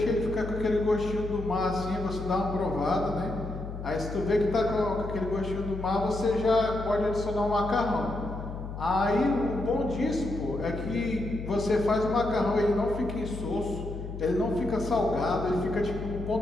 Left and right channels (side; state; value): left; noise; hum, 8 dB below the sound